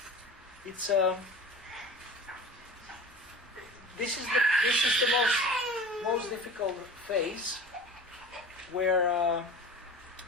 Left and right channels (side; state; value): both; normal; correlation 0.37